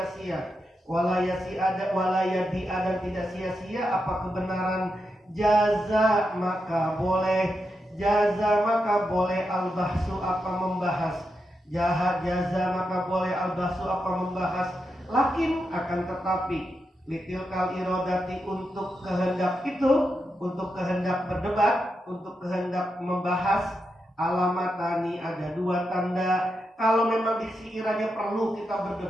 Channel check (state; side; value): normal; both; correlation 0.86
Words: Walayadi'a, dan tidak sia-sia apa kebenaran. Jaza, maka boleh. Al-bahsu, apa membahas. Jaza, maka boleh. Al-bahsu, apa membahas. Lakin, akan tetapi. Litilkal irodati, untuk kehendak itu. Untuk kehendak berdebat. Untuk kehendak membahas. Alamatani, ada 2 tanda. Kalau memang sekiranya perlu kita